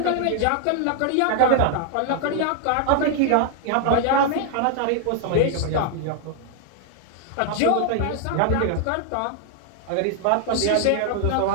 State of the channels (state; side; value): different; both; correlation 0.00